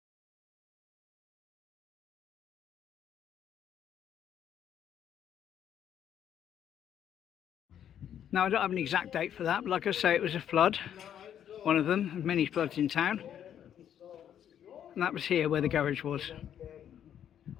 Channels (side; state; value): right; quieter; 9.7 dB